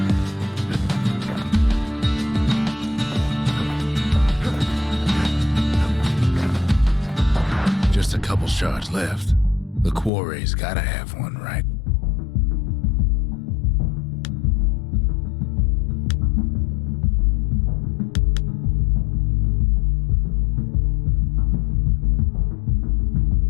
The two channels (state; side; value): drops out; right; at 10.1 s